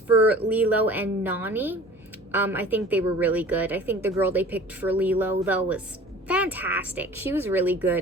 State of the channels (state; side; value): normal; both; correlation 0.44